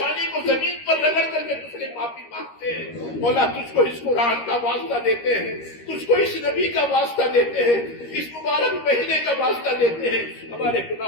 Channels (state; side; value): late; right; 13 ms